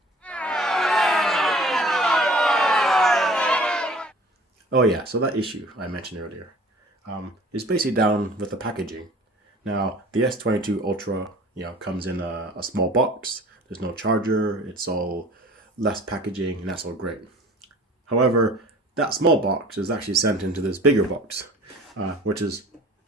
Oh yeah, so that issue I mentioned earlier is basically down with the packaging. Now the S22 Ultra, comes in a small box. There's no charger. It's all less packaging, and that's all great. However, that small box is actually sent into this bigger box, which is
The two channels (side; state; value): both; normal; correlation 0.47